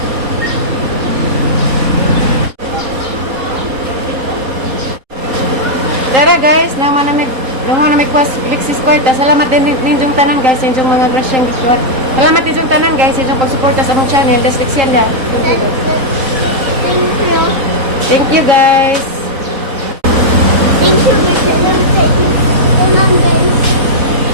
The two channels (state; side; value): late; left; 3.8 ms